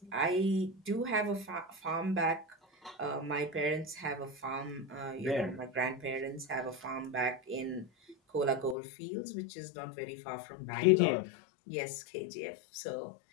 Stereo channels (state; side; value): drops out; right; at 8.8 s